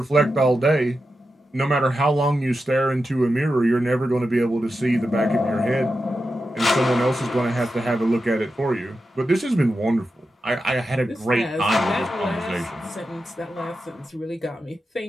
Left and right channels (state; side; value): normal; both; correlation 0.90